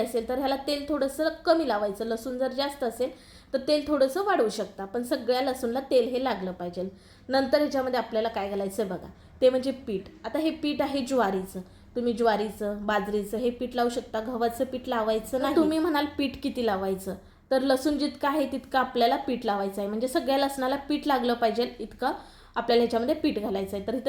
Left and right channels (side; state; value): both; identical; correlation 1.00